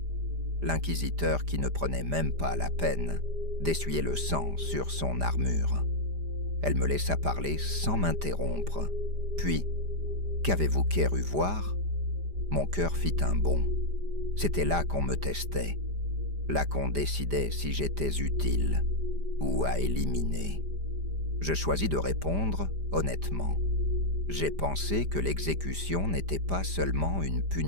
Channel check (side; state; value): left; late; 5.0 ms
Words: L'inquisiteur qui ne prenait même pas la peine d'essuyer le sang sur son armure. Elle me laissa parler sans m'interrompre. Puis, qu'avez-vous cru voir ? Mon cœur fit un bond. C'était là qu'on me testait, là qu'on décidait si j'étais utile ou à éliminer. Je choisis de répondre honnêtement. J'ai pensé que l'exécution n'était pas seulement une